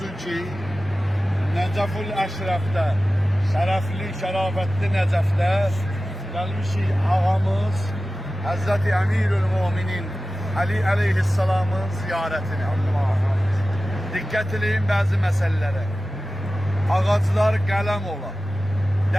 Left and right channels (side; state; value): both; normal; correlation 0.95